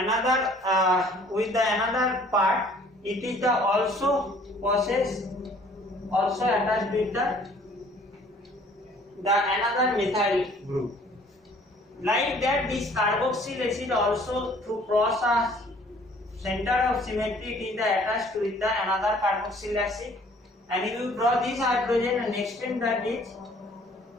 another part, it is the also process also attached with the another methyl group. Like that, this carboxyl acid also to cross a center of symmetry, it is the attached with the another carboxyl acid, and if you draw this hydrogen and extend that is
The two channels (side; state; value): both; normal; correlation 0.56